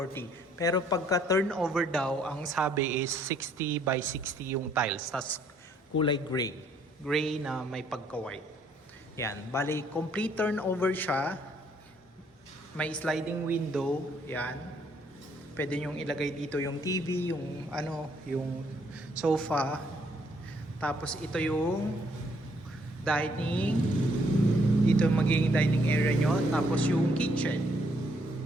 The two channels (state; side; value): normal; both; correlation 0.67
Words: Pero pagka turnover daw, ang sabi is 60 by 60 yung tiles. Tapos kulay gray. Gray na may pagka-white. Yan. Bale, complete turnover siya. May sliding window. Yan. Pwede nyong ilagay dito yung TV, yung yung sofa. Tapos ito yung dining. Dito magiging dining area nyo. Tapos yung kitchen.